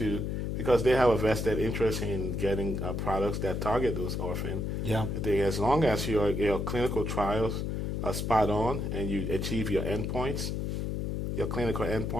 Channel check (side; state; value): left; noise; hum, 1 dB below the sound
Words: because they have a vested interest in getting products that target those orphan. Yeah, As long as your clinical trials are spot on and you achieve your endpoints, your clinical